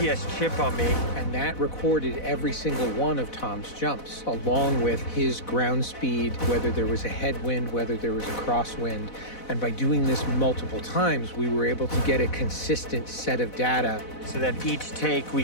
chip on me. And that recorded every single one of Tom's jumps, along with his ground speed, whether there was a headwind, whether there was a crosswind. And by doing this multiple times, we were able to get a consistent set of data. So that each take we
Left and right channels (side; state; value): right; late; 4.0 ms